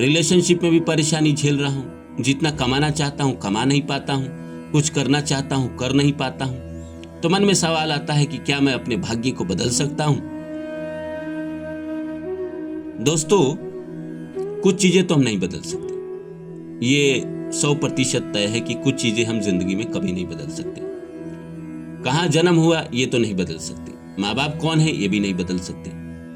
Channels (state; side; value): identical; both; correlation 1.00